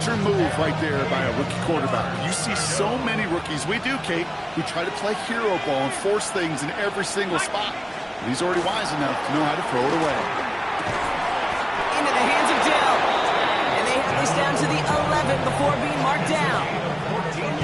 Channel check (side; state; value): both; identical; correlation 1.00